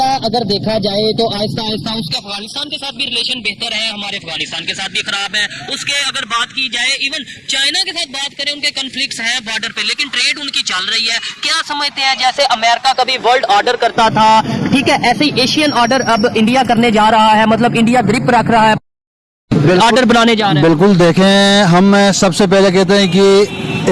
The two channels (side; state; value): both; identical; correlation 1.00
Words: अगर देखा जाए तो आहिस्ता आहिस्ता उसके अफगानिस्तान के साथ भी रिलेशन बेहतर है, हमारे अफगानिस्तान के साथ भी खराब है। उसके अगर बात की जाए, इवन चाइना के साथ बात करें, उनके कॉन्फ्लिक्ट्स हैं बॉर्डर पे, लेकिन ट्रेड उनकी चल रही है। क्या समझते हैं, जैसे अमेरिका कभी वर्ल्ड ऑर्डर करता था, ठीक है, ऐसे ही एशियन ऑर्डर अब इंडिया करने जा रहा है, मतलब इंडिया ग्रिप रख रहा है, ऑर्डर बनाने जा रहे हैं। बिल्कुल। देखें, हम सबसे पहले कहते हैं कि